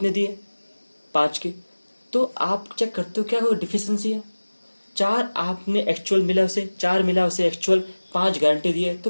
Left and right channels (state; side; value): inverted; both; correlation -1.00